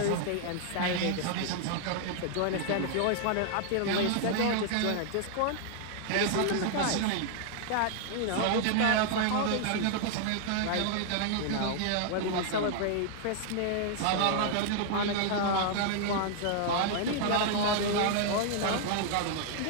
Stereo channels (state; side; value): different; both; correlation 0.00